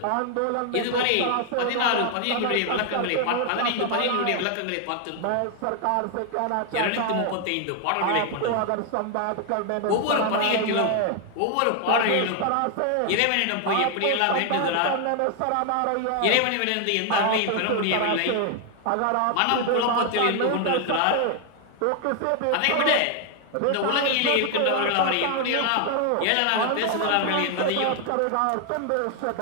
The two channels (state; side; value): different; both; correlation 0.00